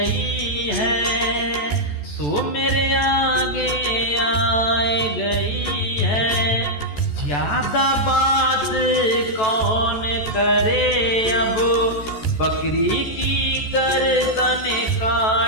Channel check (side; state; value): right; late; 14 ms